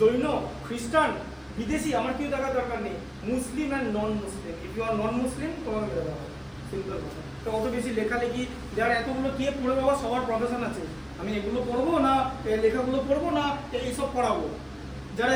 খ্রিস্টান, বিদেশি, আমার কেউ দেখার দরকার নেই। Muslim and non Muslim, if you are non Muslim তোমাকে মেরে দেওয়া হবে। সিম্পল কথা। তো অত বেশি লেখালেখি যার এতগুলো কে পড়ে, বাবা সবার প্রফেশন আছে। আমি এগুলো পড়বো না, লেখাগুলো পড়বো না, এইসব পড়াবো। যারা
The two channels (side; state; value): both; identical; correlation 1.00